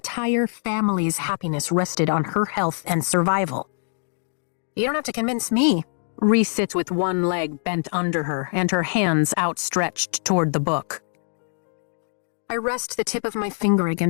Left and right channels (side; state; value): right; silent; digital silence